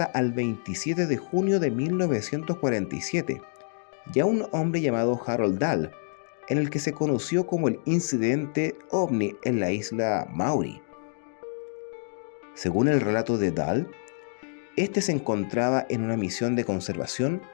al 27 de junio de 1947 y a un hombre llamado Harold Dahl, en el que se conoció como el incidente ovni en la isla Maury. Según el relato de Dahl, este se encontraba en una misión de conservación,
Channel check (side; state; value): right; silent; digital silence